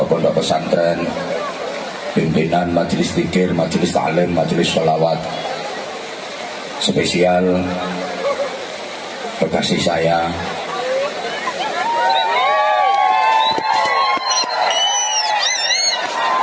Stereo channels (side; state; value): both; identical; correlation 1.00